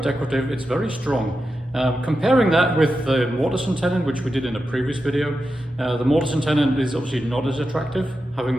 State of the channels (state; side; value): normal; both; correlation 0.89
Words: decorative. It's very strong. Comparing that with the mortise and tenon, which we did in a previous video, the mortise and tenon is obviously not as attractive. Having